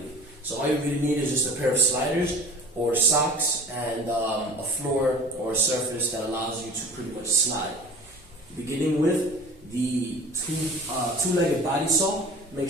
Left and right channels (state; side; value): normal; both; correlation 0.40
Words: So all you really need is just a pair of sliders or socks and a floor or a surface that allows you to pretty much slide. Beginning with the two-legged body saw, make